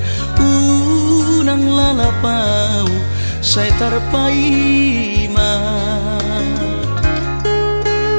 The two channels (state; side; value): inverted; both; correlation -1.00